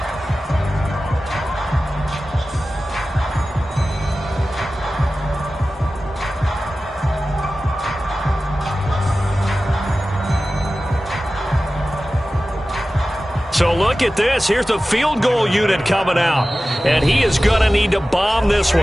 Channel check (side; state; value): both; normal; correlation 0.95